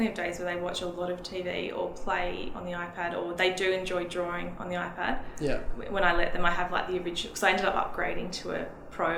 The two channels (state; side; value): identical; both; correlation 1.00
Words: have days where they watch a lot of TV or play on the iPad, or they do enjoy drawing on the iPad. Yeah. When I let them, I have like the original, because I ended up upgrading to a Pro